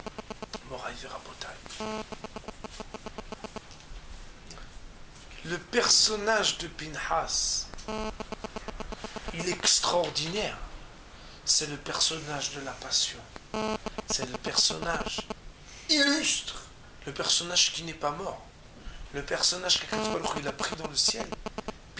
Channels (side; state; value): both; identical; correlation 1.00